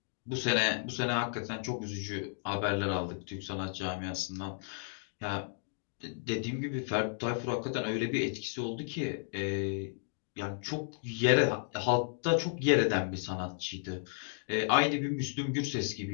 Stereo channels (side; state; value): right; silent; digital silence